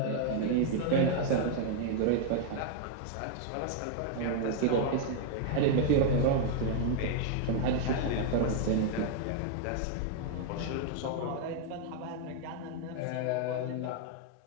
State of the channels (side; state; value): both; different; correlation 0.00